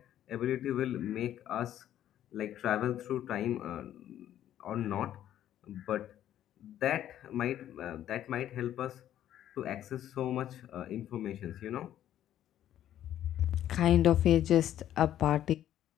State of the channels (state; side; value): quieter; right; 11.6 dB